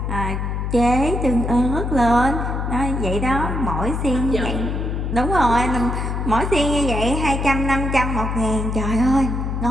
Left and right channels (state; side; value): noise; left; hum, 2 dB below the sound